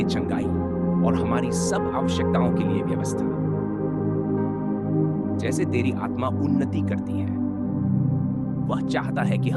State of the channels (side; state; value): both; identical; correlation 1.00